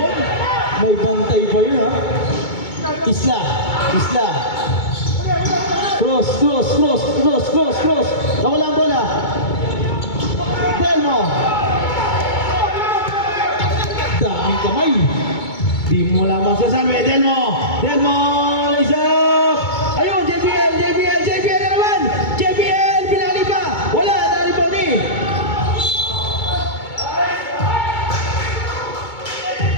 May bantay pa yun, ha? Isla! Cruz! Nawala ang bola! Delmo! Daming kamay! Di mo lamang sasabi, Delmo, lays up! Ayun, JPL na naman! JPL, pinali pa! Wala, naribaw ni!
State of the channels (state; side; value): late; right; 2.2 ms